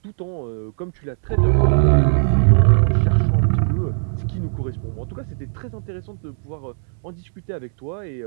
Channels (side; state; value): left; silent; 66 dB below the other